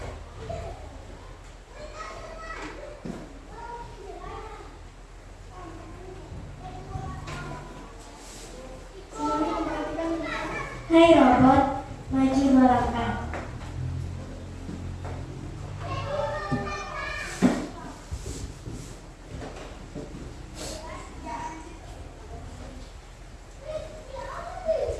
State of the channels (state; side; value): identical; both; correlation 1.00